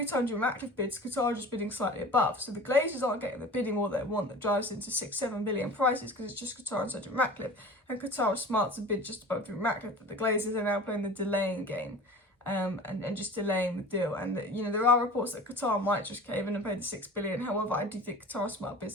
time Jim Ratcliffe bids, Qatar are just bidding slightly above. So the Glazers aren't getting the bidding all they want, that drives into $6-7 billion prices, because it's just Qatar and Sergio Ratcliffe. And Qatar are smart to bid just above Jim Ratcliffe, but the Glazers are now playing the delaying game, and just delaying the deal. And there are reports that Qatar might just cave in and pay the $6 billion. However, I do think Qatar are smart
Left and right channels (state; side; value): normal; both; correlation 0.39